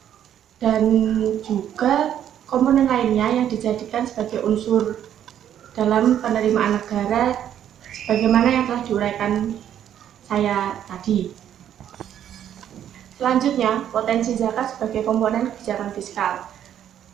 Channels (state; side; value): quieter; left; 10.2 dB